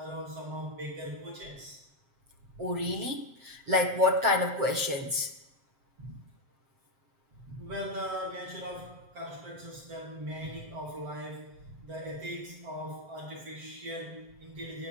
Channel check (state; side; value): late; left; 7.6 ms